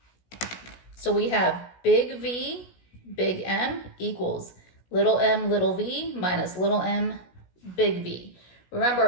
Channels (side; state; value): right; late; 16 ms